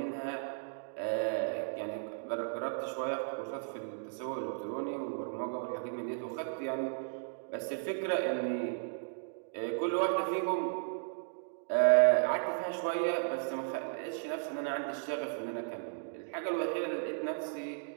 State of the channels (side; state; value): left; silent; digital silence